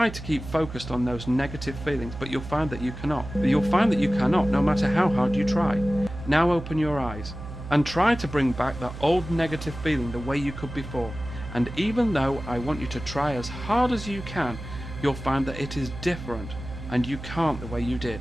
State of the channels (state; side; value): noise; right; hum, 11 dB below the sound